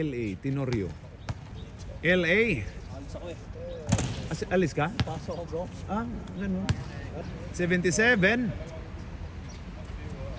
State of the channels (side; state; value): both; identical; correlation 1.00